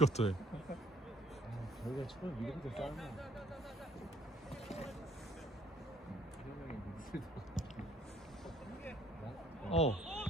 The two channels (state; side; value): normal; both; correlation 0.61